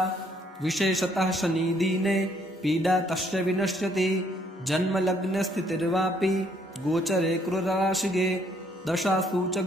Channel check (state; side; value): normal; both; correlation 0.67